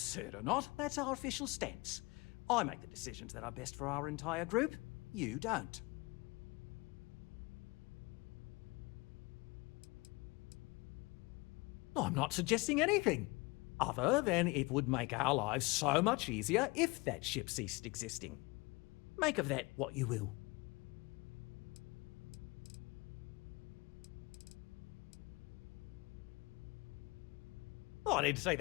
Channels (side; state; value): right; quieter; 25.1 dB